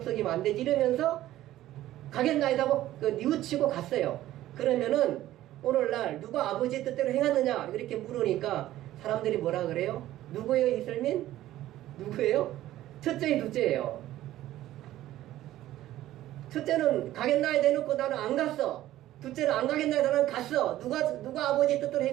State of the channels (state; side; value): quieter; left; 14.3 dB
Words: 안 되지 이러면서 가겠나이다 하고 뉘우치고 갔어요. 그러면은 오늘날 누가 아버지의 뜻대로 행하느냐 이렇게 물으니까 사람들이 뭐라 그래요? 누구예요 이슬민? 누구예요? 첫째의 둘째예요. 첫째는 가겠나이 대놓고 나는 안 갔어. 둘째는 안 가겠나이 나는 갔어. 누가 아버지의 뜻대로